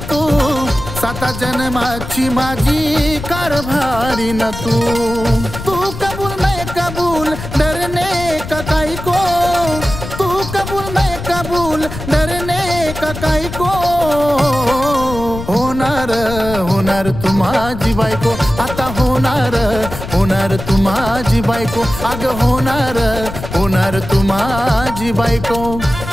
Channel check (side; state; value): left; noise; rumble, 9 dB below the sound